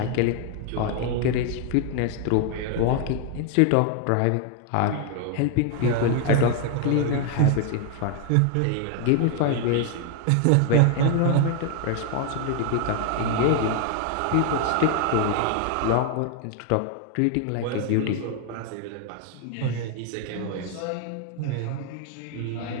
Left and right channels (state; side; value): different; both; correlation 0.00